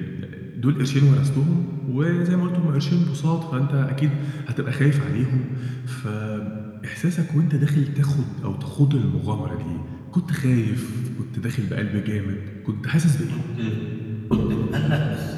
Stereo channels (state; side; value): identical; both; correlation 1.00